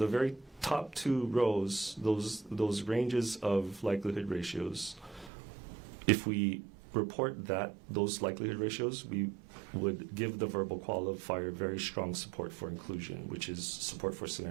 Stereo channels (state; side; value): drops out; left; at 5.3 s